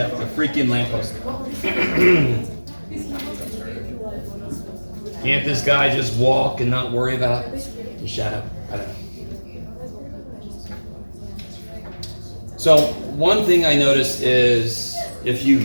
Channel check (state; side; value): inverted; both; correlation -1.00